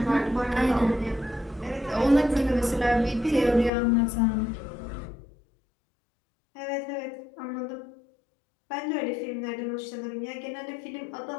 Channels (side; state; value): right; drops out; at 3.7 s